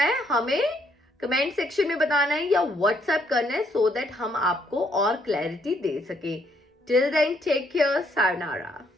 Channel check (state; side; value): normal; both; correlation 0.71